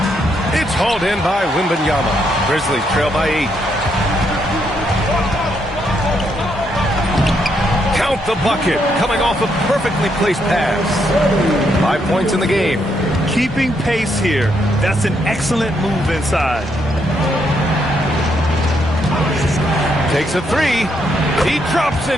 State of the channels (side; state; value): both; normal; correlation 0.76